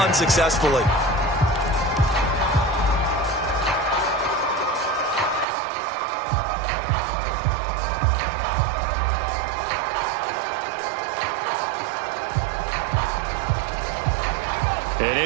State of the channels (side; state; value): left; drops out; at 5.5 s